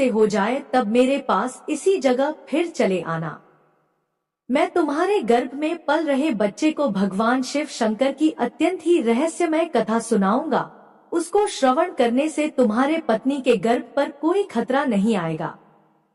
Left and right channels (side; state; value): both; identical; correlation 1.00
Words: हो जाए तब मेरे पास इसी जगह फिर चले आना। मैं तुम्हारे गर्भ में पल रहे बच्चे को भगवान शिव शंकर की अत्यंत ही रहस्यमय कथा सुनाऊंगा। उसको श्रवण करने से तुम्हारे पत्नी के गर्भ पर कोई खतरा नहीं आएगा।